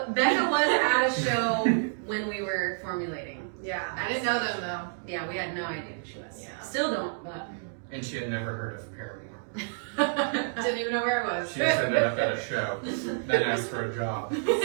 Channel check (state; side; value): silent; left; digital silence